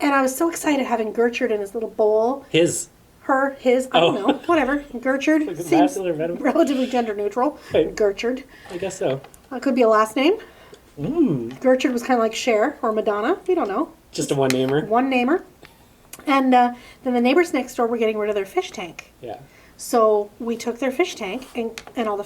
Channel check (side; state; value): both; identical; correlation 1.00